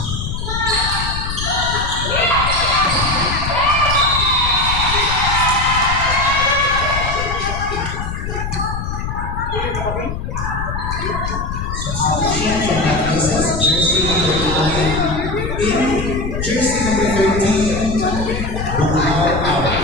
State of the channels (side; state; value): left; noise; rumble, 4 dB below the sound